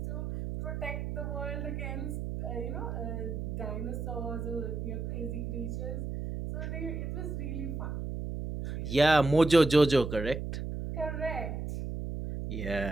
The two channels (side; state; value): right; noise; hum, 4 dB below the sound